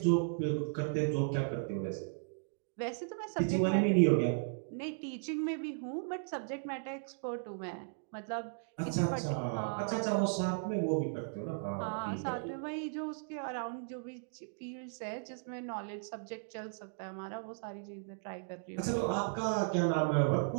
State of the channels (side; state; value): left; silent; digital silence